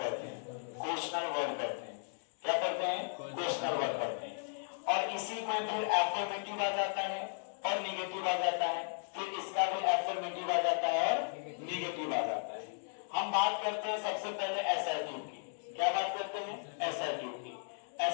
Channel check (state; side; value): silent; right; digital silence